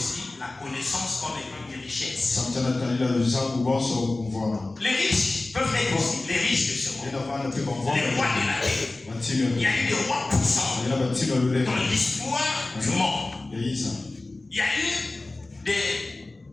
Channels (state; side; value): quieter; right; 3.0 dB